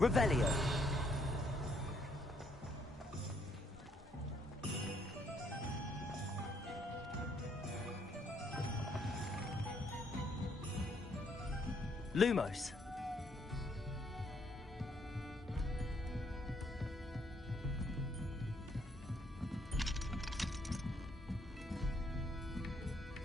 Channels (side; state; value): both; normal; correlation 0.70